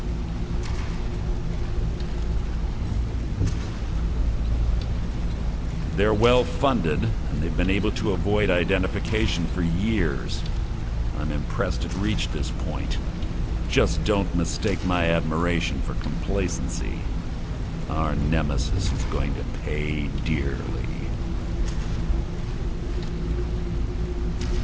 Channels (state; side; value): identical; both; correlation 1.00